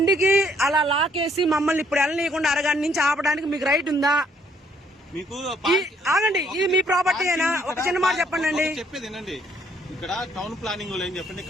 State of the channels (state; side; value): normal; both; correlation 0.67